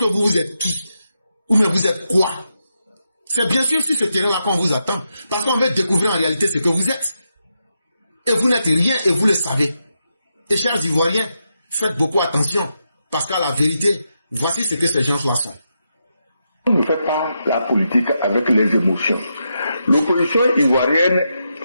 vous êtes qui? Ou bien vous êtes quoi? C'est bien sûr sur ce terrain-là qu'on vous attend. Parce qu'on veut découvrir en réalité ce que vous êtes. Et vous n'êtes rien et vous le savez. Et chers Ivoiriens, faites beaucoup attention. Parce qu'à la vérité, voici ce que ces gens-là sont. On ne fait pas la politique avec les émotions. L'opposition ivoirienne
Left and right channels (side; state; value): both; inverted; correlation -0.85